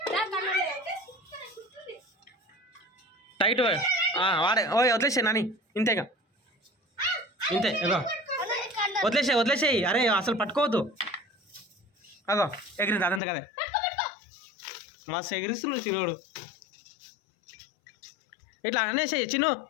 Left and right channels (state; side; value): drops out; right; at 13.2 s